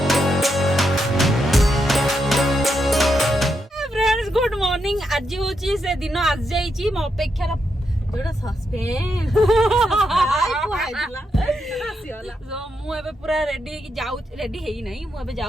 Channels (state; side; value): normal; both; correlation 0.83